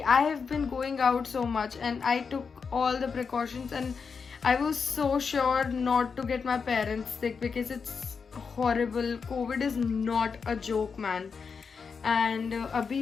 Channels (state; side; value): quieter; right; 5.6 dB